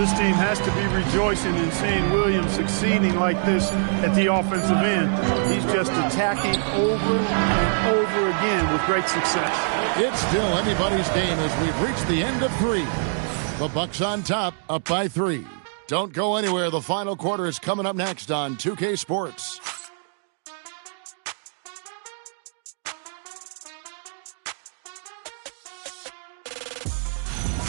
team has to be rejoicing in seeing Williams succeeding like this at the offensive end. He's just attacking over and over again with great success. It's still anybody's game as we've reached the end of 3. The Bucks on top, up by 3. Don't go anywhere. The final quarter is coming up next on 2K Sports.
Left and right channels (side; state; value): left; silent; digital silence